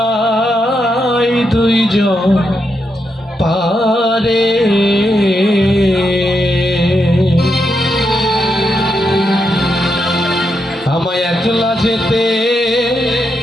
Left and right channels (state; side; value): normal; both; correlation 0.83